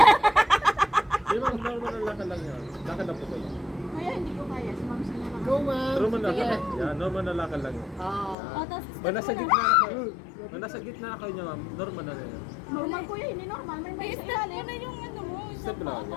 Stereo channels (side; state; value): right; drops out; at 8.3 s